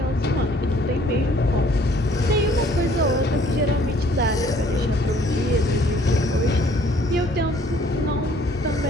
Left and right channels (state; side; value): normal; both; correlation 0.59